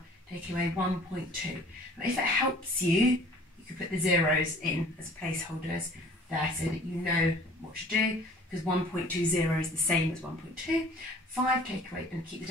Take away 1.2. Now, if it helps you, you could put the zeros in as placeholders there so that you know what to do, because 1.20 is the same as 1.2. 5 take away, and keep the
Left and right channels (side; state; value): both; normal; correlation 0.50